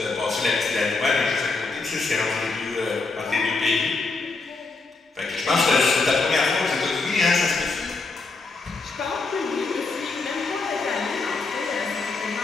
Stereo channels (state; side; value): quieter; right; 3.9 dB